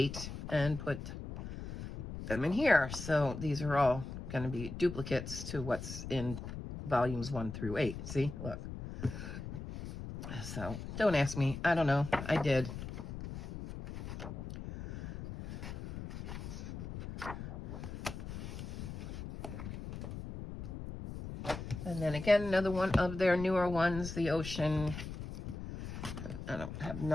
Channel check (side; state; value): left; noise; rumble, 8 dB below the sound